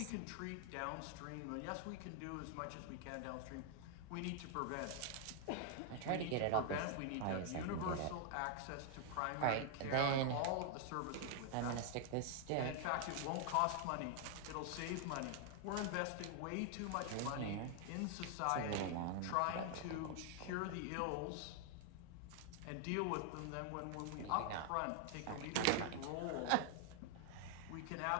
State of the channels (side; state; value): both; different; correlation 0.00